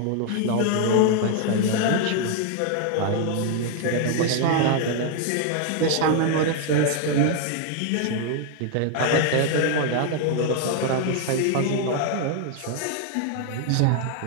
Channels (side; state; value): both; different; correlation 0.00